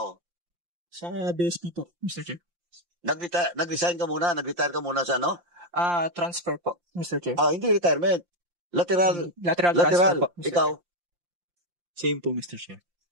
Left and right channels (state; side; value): late; left; 5.7 ms